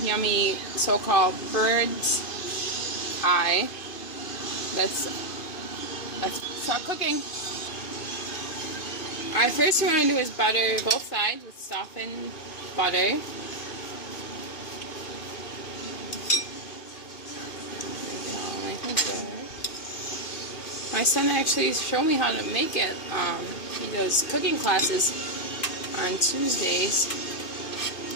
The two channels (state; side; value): late; right; 2.5 ms